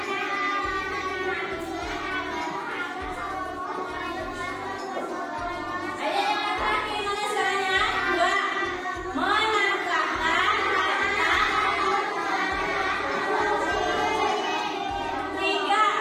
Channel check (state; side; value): identical; both; correlation 1.00